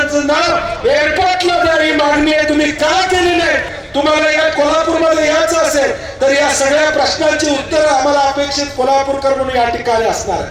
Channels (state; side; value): identical; both; correlation 1.00